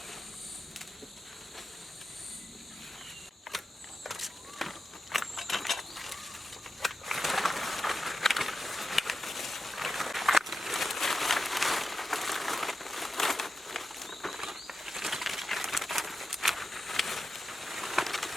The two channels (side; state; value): both; normal; correlation 0.91